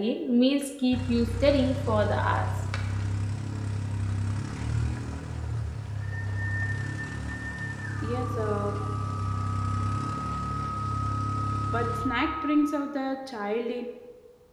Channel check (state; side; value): identical; both; correlation 1.00